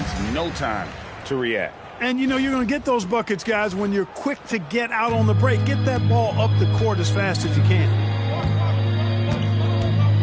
no time to react. And you know you're going to get those buckets, guys, when you're quick to get out on the break. Get that ball up the court as fast as you can.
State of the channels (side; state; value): both; identical; correlation 1.00